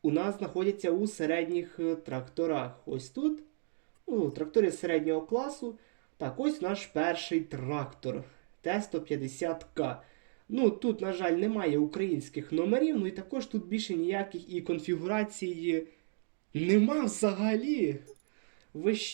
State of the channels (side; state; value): left; silent; digital silence